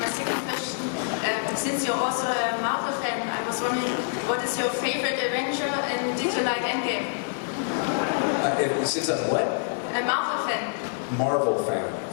my second question, since you're also a Marvel fan, I was wondering, what is your favorite Avenger, and did you like Endgame? Since I'm what? A Marvel fan. Marvel fan.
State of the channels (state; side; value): silent; right; digital silence